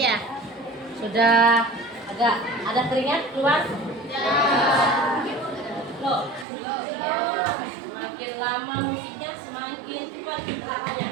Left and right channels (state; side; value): drops out; left; at 6.5 s